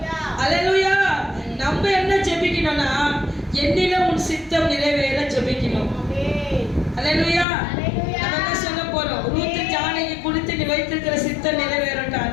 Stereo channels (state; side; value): drops out; right; at 7.5 s